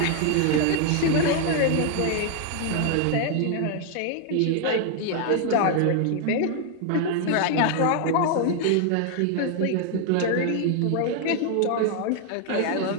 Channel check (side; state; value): both; different; correlation 0.00